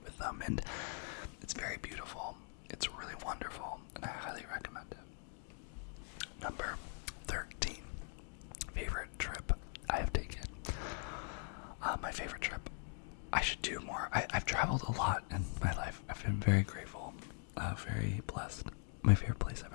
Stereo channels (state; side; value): silent; right; 50 dB below the other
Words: with them, and it's very beautiful. It's really wonderful, and I highly recommend it. Number 13, favorite trip I have taken. My favorite trip, I should do more. I've traveled a lot in my life. I've been very grateful, very blessed. My favorite place I've